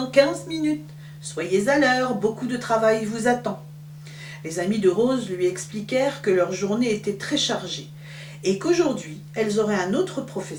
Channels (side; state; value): both; identical; correlation 1.00